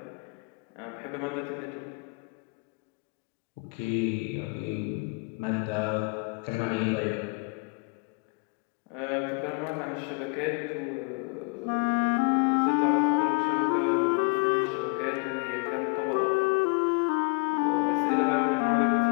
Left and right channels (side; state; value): right; quieter; 33.4 dB